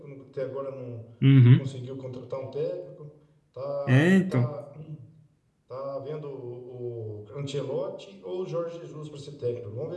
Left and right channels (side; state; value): both; identical; correlation 1.00